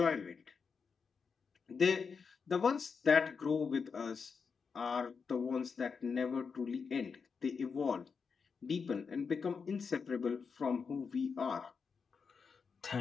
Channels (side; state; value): right; quieter; 5.6 dB